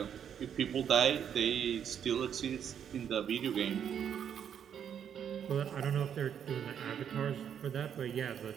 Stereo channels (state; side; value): quieter; left; 8.6 dB